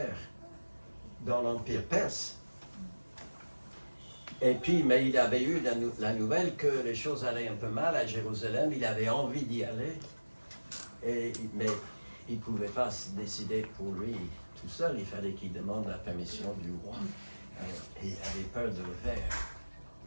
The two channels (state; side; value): inverted; both; correlation -1.00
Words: dans l'Empire perse. Et puis, mais il avait eu la nouvelle que les choses allaient un peu mal à Jérusalem, il avait envie d'y aller, mais il ne pouvait pas se décider pour lui tout seul, il fallait qu'il demande la permission du roi. Et il avait peur de le faire.